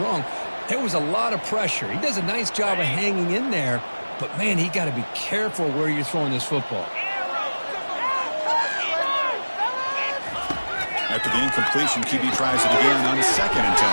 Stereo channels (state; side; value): inverted; both; correlation -1.00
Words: wrong. There was a lot of pressure. He does a nice job of hanging in there. But, man, he got to be careful where you're throwing this football. After the incompletion, QB tries it again on 2nd and 10.